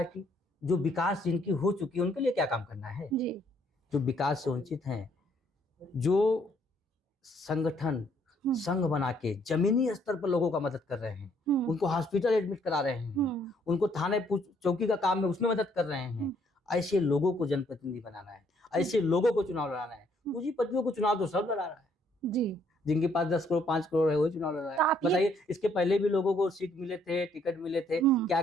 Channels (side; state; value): both; normal; correlation 0.67